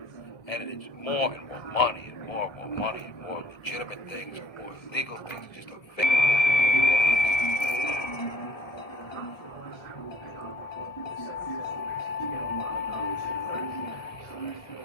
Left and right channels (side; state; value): right; late; 1.7 ms